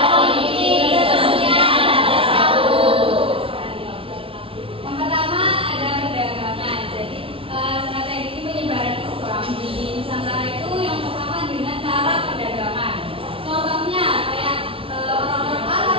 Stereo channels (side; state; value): left; late; 0.26 ms